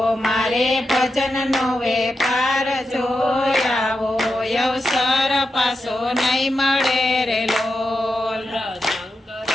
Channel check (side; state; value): both; normal; correlation 0.88